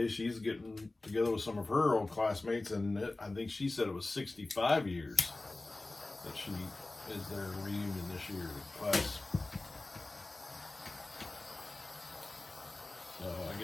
she's getting together with some of her old classmates, and I think she said it was 65 years that she is their reunion this year class. So I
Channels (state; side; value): quieter; right; 3.0 dB